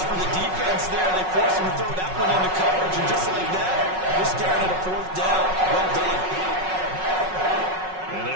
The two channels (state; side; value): late; left; 5.4 ms